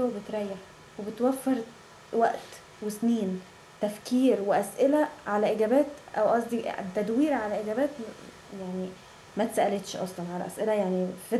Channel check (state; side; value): identical; both; correlation 1.00